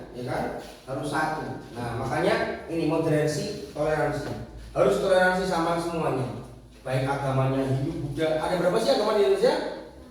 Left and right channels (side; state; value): both; identical; correlation 1.00